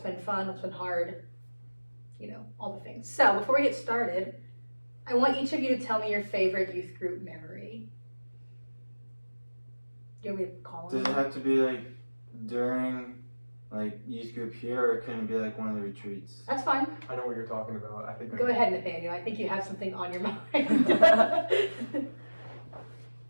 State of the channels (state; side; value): inverted; both; correlation -1.00